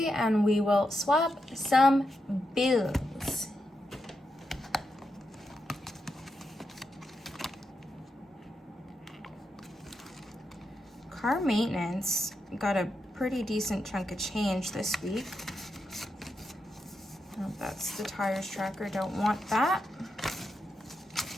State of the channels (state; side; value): normal; both; correlation 0.85